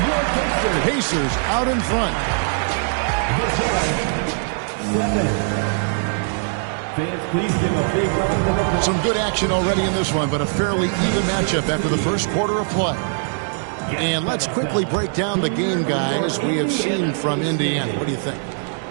Pacers out in front. Some good action already in this one, but a fairly even matchup after the first quarter of play. And let's quickly break down the game, guys, we have seen from Indiana. What do you think?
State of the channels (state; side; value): silent; left; 65 dB below the other